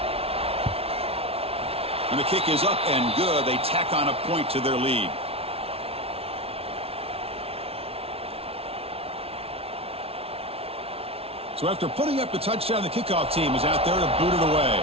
And the kick is up and good. They tack on a point to their lead. So after putting up the touchdown, the kickoff team is out there to boot it away.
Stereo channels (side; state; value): left; late; 0.29 ms